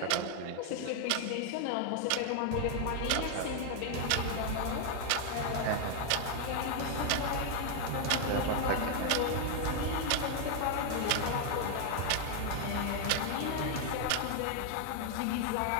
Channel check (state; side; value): different; both; correlation 0.00